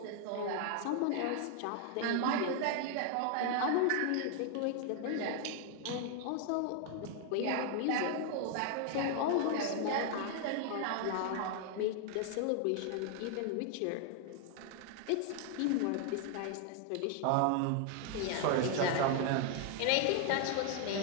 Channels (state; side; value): different; both; correlation 0.00